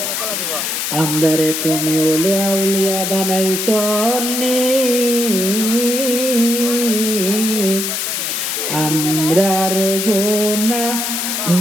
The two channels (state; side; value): noise; left; hiss, 2 dB below the sound